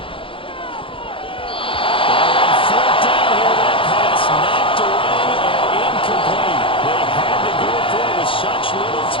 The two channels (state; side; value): late; right; 0.25 ms